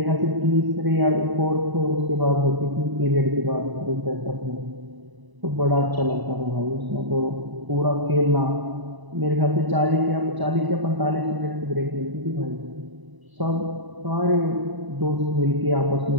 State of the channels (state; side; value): late; left; 1.0 ms